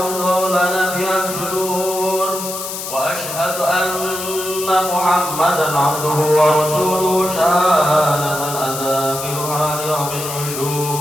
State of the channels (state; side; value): noise; left; hiss, 7 dB below the sound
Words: lana biha sudur, wa asyhadu anna Muhammadan abduhu wa rasuluhu syahadatan adzakiruha liyawmil